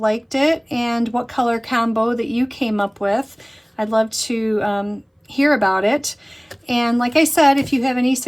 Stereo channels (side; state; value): both; identical; correlation 1.00